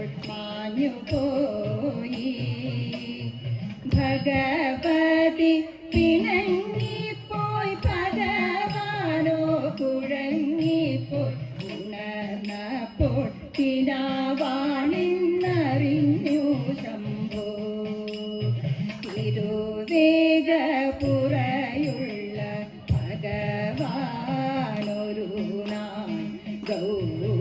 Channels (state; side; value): identical; both; correlation 1.00